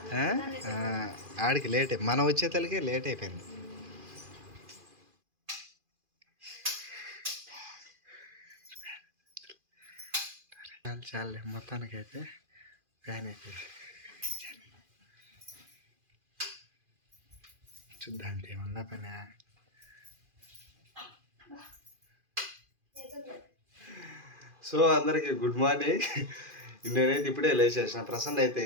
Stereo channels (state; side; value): late; left; 2.4 ms